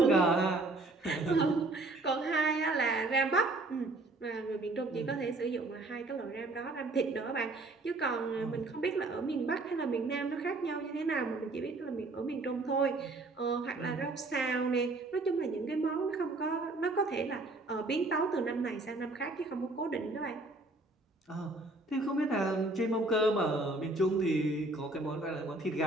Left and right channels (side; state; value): left; quieter; 3.0 dB